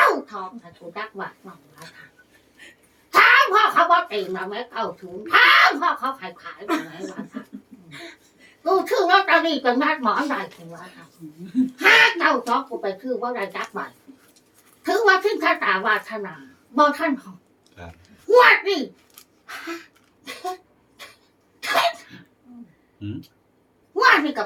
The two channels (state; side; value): identical; both; correlation 1.00